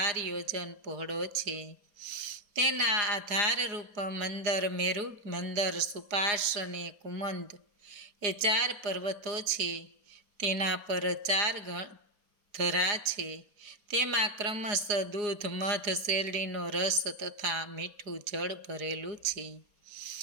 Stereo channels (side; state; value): left; late; 4.8 ms